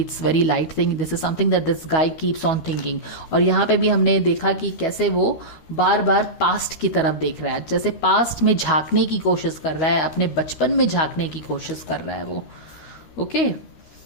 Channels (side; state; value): right; late; 13 ms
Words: very light thing. This is something that this guy keeps on thinking. और यहाँ पे भी हमने देखा कि कैसे वो बार बार पास्ट की तरफ देख रहा है, जैसे पास्ट में झांकने की कोशिश कर रहा है, अपने बचपन में झांकने की कोशिश कर रहा है वो. ओके,